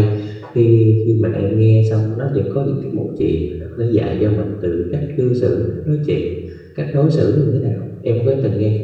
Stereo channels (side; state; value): both; identical; correlation 1.00